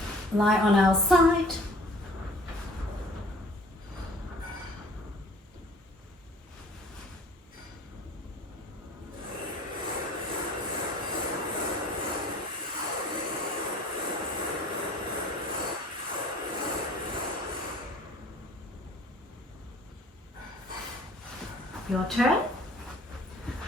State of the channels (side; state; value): both; normal; correlation 0.49